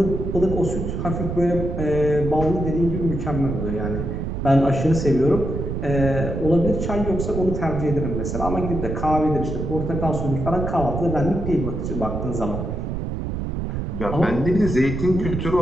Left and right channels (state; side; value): noise; right; rumble, 3 dB below the sound